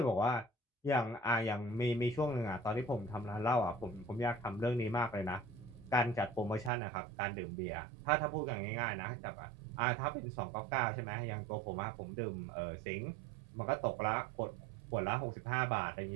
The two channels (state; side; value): drops out; left; at 6.7 s